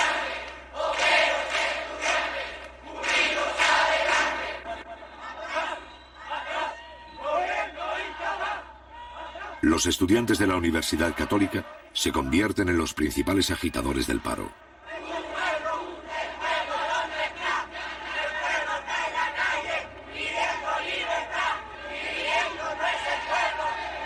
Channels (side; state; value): both; identical; correlation 1.00